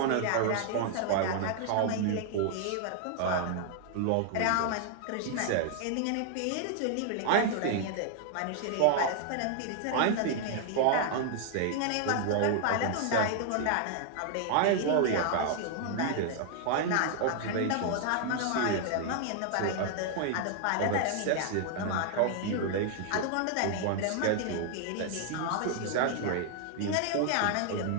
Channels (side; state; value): both; different; correlation 0.00